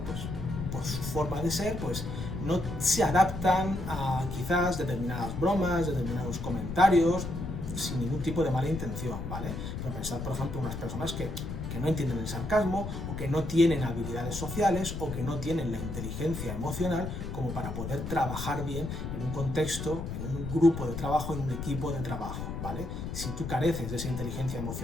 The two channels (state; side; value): noise; left; rumble, 6 dB below the sound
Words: pues por su forma de ser, pues no se adaptan a quizás determinadas bromas, determinados comentarios, sin ningún tipo de mala intención, ¿vale? Pero pensad, por ejemplo, unas personas que no entienden el sarcasmo, o que no tienen habilidades sociales, o que no tienen la inteligencia emocional como para poder trabajar bien en un contexto, en un grupo de trabajo, en un equipo de trabajo, ¿vale? Si tú careces de esa inteligencia